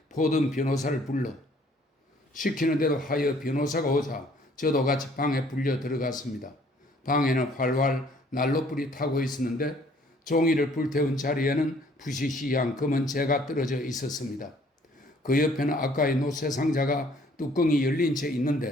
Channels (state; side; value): normal; both; correlation 0.59